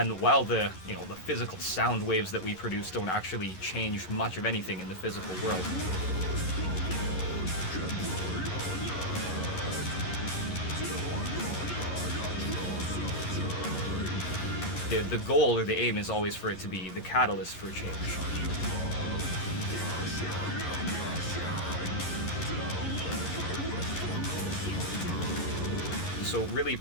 while the physical sound waves that we produce don't actually change much of anything in the physical world, the goal or the aim is always for it to be the catalyst for change. So really,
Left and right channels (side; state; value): right; late; 11 ms